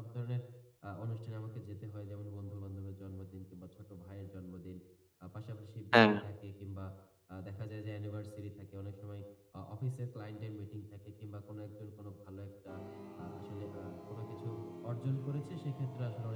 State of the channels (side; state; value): both; identical; correlation 1.00